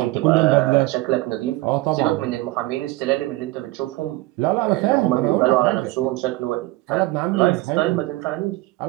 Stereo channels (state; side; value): quieter; left; 19.5 dB